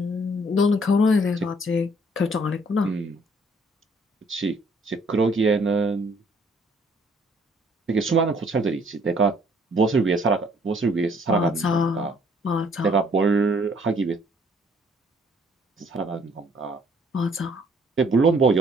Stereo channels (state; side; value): normal; both; correlation 0.62